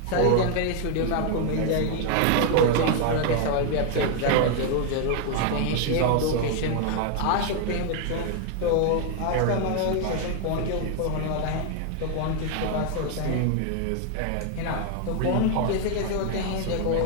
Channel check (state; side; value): different; both; correlation 0.00